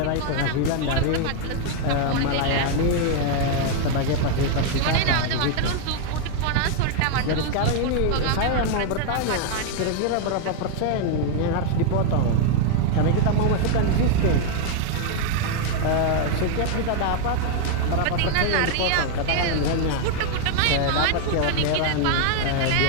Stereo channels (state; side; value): different; both; correlation 0.00